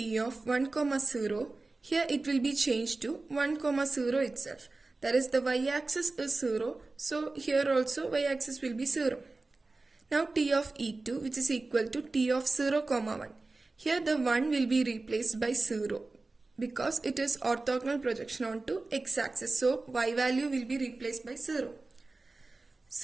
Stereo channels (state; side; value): quieter; left; 3.4 dB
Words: of 1, 0, here it will be changed to 1, 0 itself. That is, the y-axis is 0, so here also y-axis will be 0. Now t of E2, which is equal to t of 0, 1. Here the 1 will be replaced by 0 because it is orthogonal projection onto x-axis. So y value will be replaced by 0.